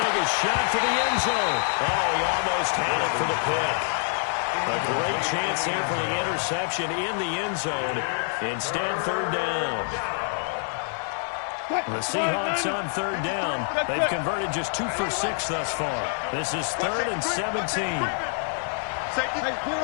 a shot for the end zone. Oh, he almost had it for the pick. A great chance here for the interception in the end zone. Instead, third down. The Seahawks on third down. They've converted just 2 for 6 thus far. This is 3rd and 17. Safety. Hey,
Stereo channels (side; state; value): right; silent; 58 dB below the other